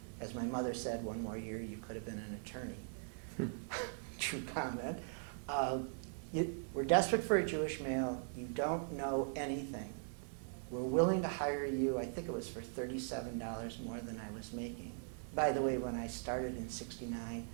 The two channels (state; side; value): silent; left; digital silence